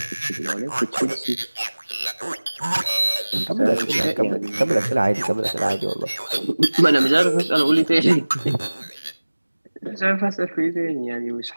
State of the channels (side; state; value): both; inverted; correlation -1.00